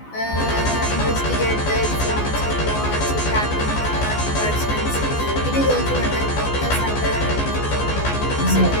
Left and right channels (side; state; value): right; late; 14 ms